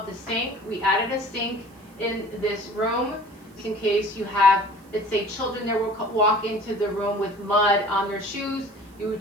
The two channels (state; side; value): noise; right; hiss, 29 dB below the sound